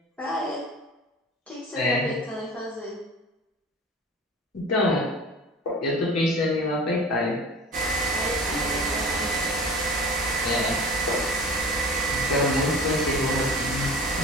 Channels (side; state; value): both; normal; correlation 0.40